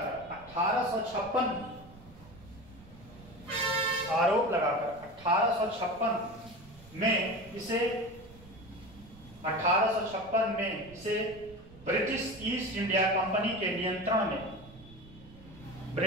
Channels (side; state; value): right; noise; rumble, 21 dB below the sound